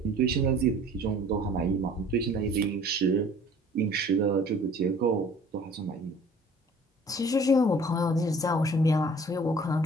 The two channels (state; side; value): normal; both; correlation 0.50